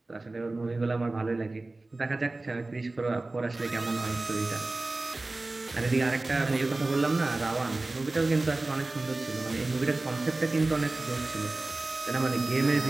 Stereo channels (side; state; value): left; quieter; 3.1 dB